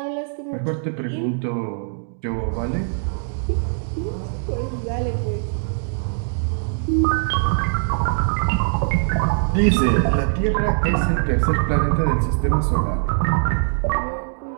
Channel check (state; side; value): silent; left; digital silence